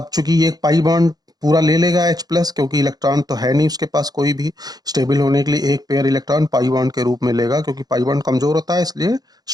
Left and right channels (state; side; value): late; left; 0.19 ms